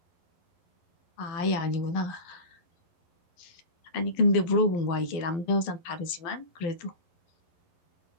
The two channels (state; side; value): late; right; 11 ms